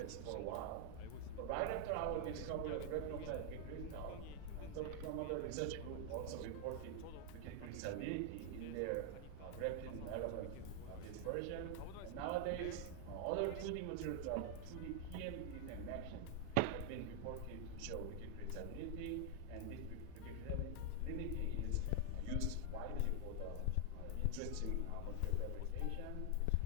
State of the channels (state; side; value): different; both; correlation 0.00